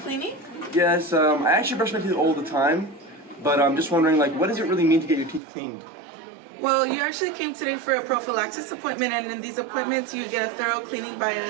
cleaning. Yes, I actually brush my teeth all the time, but I'm just wondering, like, what does it really mean to get your teeth cleaned? Well, you actually came today for a prophylaxis appointment, and in these appointments you get a thorough cleaning by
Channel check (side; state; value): left; drops out; at 5.4 s